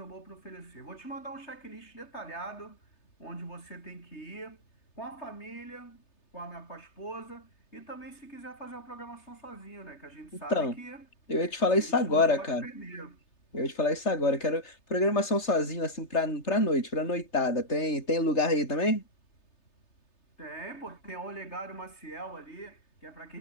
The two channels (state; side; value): late; right; 3.3 ms